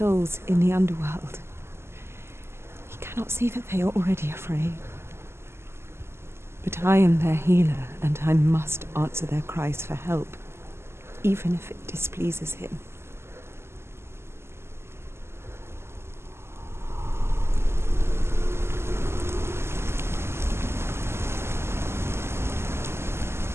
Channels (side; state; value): left; late; 0.12 ms